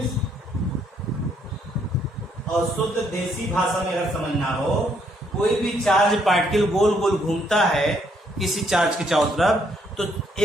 और शुद्ध देसी भाषा में अगर समझना हो, कोई भी चार्ज पार्टिकल गोल गोल घूमता है किसी चार्ज के चारों तरफ, तो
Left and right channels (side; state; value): both; normal; correlation 0.70